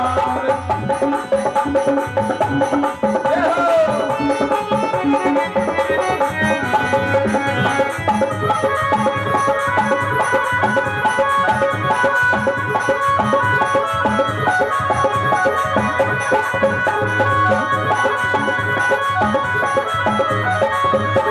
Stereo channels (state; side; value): identical; both; correlation 1.00